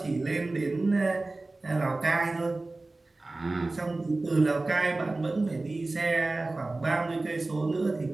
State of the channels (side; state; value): left; quieter; 3.1 dB